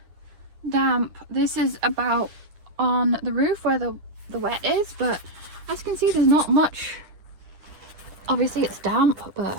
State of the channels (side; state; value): left; late; 9.9 ms